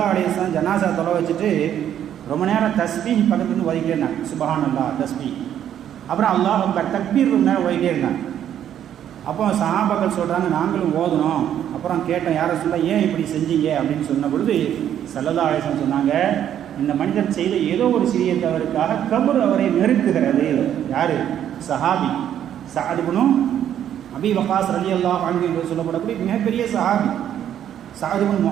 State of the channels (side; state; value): left; quieter; 10.2 dB